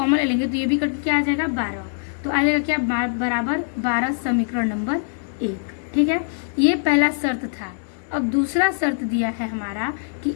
ले लेंगे तो ये भी कट के क्या आ जाएगा 12, तो आ जाएगा क्या बराबर 12 समीकरण नंबर 1। ठीक है, ये पहला शर्त था। अब दूसरा शर्त दिया है हमारा कि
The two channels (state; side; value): silent; right; digital silence